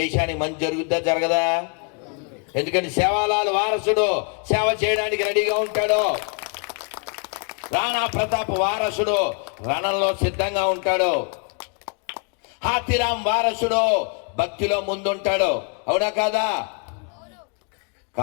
మంచి జరుగుద్దా జరగదా? ఎందుకని సేవాలాల్ వారసుడు సేవ చేయడానికి రెడీగా ఉంటాడు. రాణా ప్రతాప్ వారసుడు రణంలో సిద్ధంగా ఉంటాడు. హాతీరామ్ వారసుడు భక్తిలో ముందుంటాడు. అవునా కాదా?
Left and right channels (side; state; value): right; quieter; 38.9 dB